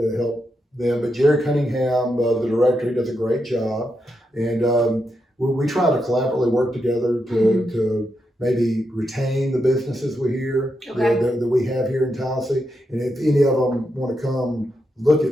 help them. But Jerry Cunningham, the director, he does a great job, and we try to collaboratively work together to maybe retain the businesses that we have here in Tallassee. And if any of them want to come look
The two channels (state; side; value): normal; both; correlation 0.84